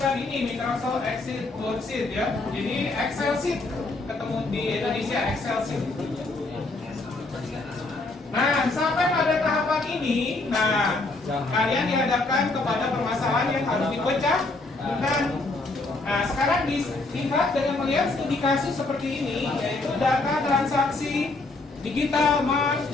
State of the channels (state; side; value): quieter; right; 3.2 dB